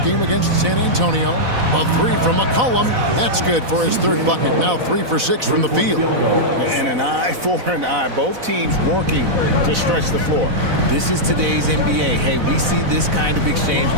game against San Antonio. A 3 from McCollum. That's good for his 3rd bucket. Now 3 for 6 from the field. And an eye for an eye. Both teams working to stretch the floor. This is today's NBA. Hey, we see this kind of exchange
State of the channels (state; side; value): late; left; 4.0 ms